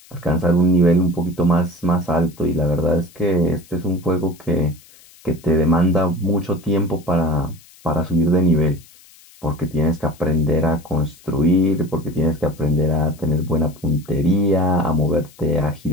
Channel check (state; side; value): noise; left; hiss, 25 dB below the sound